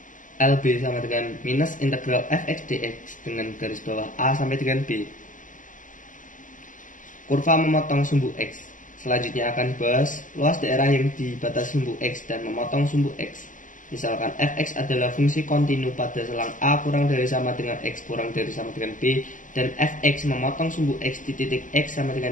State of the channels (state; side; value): late; right; 0.38 ms